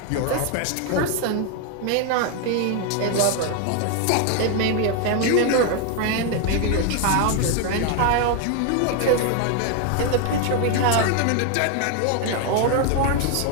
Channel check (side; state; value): both; different; correlation 0.01